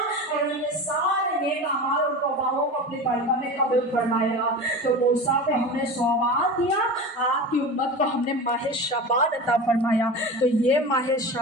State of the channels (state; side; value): normal; both; correlation 0.30